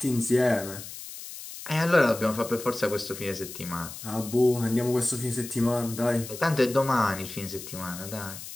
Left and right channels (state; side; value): noise; left; hiss, 12 dB below the sound